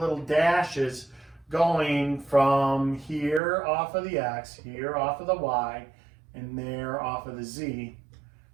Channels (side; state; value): left; drops out; at 3.4 s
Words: dashes going from here off of the X, here off of the Y, and there off of the Z